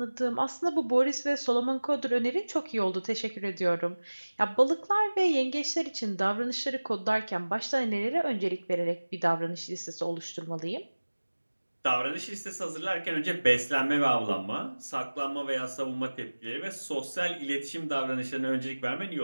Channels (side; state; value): both; inverted; correlation -1.00